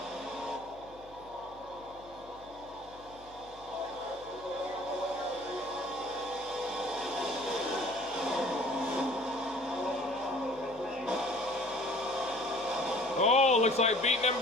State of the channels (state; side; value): noise; left; hum, 24 dB below the sound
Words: Oh, looks like beating and